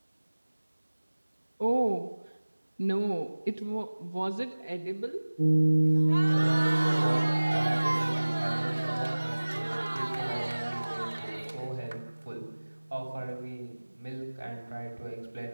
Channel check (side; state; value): both; inverted; correlation -1.00